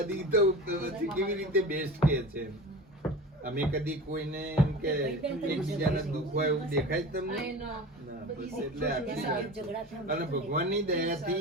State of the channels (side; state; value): both; normal; correlation 0.34